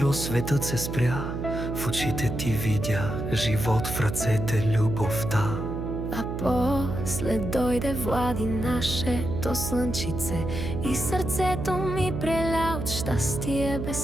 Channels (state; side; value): noise; right; hum, 4 dB below the sound